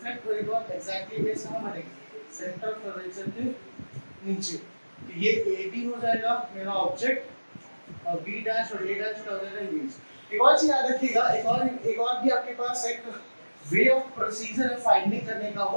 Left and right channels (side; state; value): both; inverted; correlation -1.00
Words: होएगा, एग्जैक्टली इमेज कहां बनेगी? सेंटर ऑफ कर्वेचर के नीचे। तो ये ए बी हो जाएगा मेरा ऑब्जेक्ट और बी डैश और ए डैश का हो जाएगा इमेज। एक और चीज याद रखिएगा, एक और भी आपके पास एक वे ऑफ प्रोसीजर है फाइंडिंग करने का।